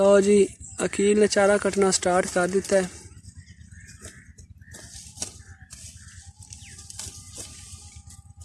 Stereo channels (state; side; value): identical; both; correlation 1.00